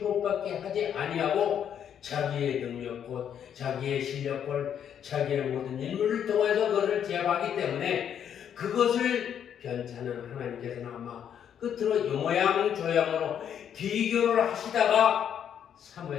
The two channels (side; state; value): right; quieter; 8.9 dB